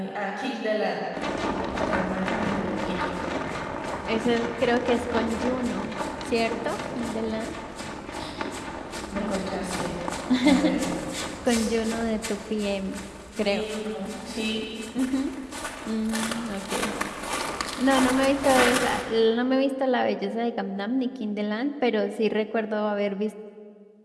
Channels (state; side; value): identical; both; correlation 1.00